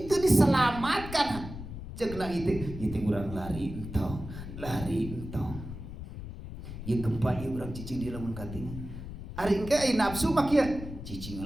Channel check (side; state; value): left; noise; rumble, 10 dB below the sound